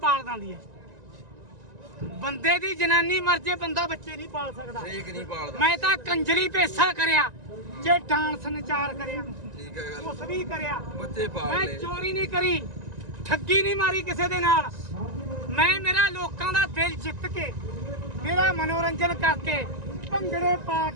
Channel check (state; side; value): late; left; 1.9 ms